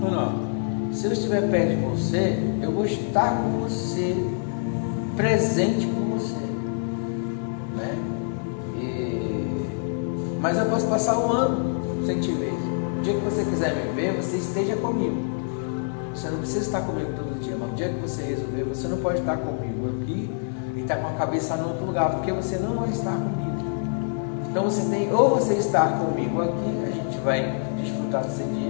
se eu estiver perto de você, eu vou estar com você, presente com você, né? Mas eu posso passar 1 ano sem te ver. O dia que você quiser me ver, você esteja comigo. Você não precisa estar comigo todo dia, mas o dia que você resolver, você não pode estar comigo aqui e estar com a cabeça em outro lugar, porque você não vai estar comigo. Então você tem, ou você estar comigo aqui, a gente vai desfrutar desse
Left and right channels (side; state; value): right; silent; digital silence